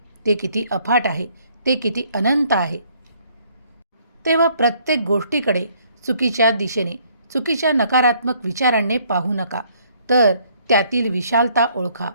ते किती अफाट आहे, ते किती अनंत आहे. तेव्हा प्रत्येक गोष्टीकडे चुकीच्या दिशेने, चुकीच्या नकारात्मक विचारांनी पाहू नका, तर त्यातील विशालता ओळखा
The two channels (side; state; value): both; inverted; correlation -0.64